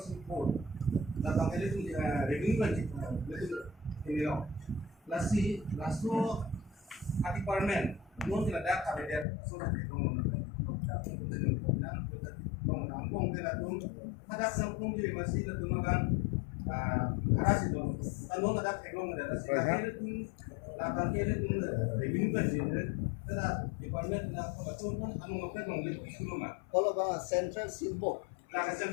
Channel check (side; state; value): right; drops out; at 9.2 s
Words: support la bangkeli tu revenue budget betul ini lo lasi laso ati parmen non tidak ada kabinet so na dong nang tidak dong ada sangkung jadi masih ada makan ada sih dong kalau ada ekong ada sih la bangkeli tu revenue budget ada department na betul pun anu ngapa dong lebih dulu mah kalau bang central silbo la